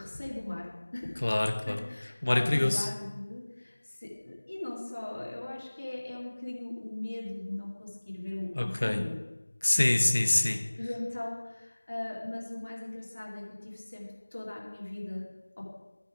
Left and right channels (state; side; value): inverted; both; correlation -1.00